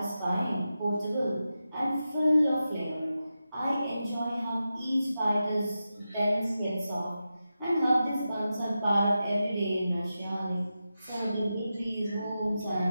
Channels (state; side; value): inverted; both; correlation -0.91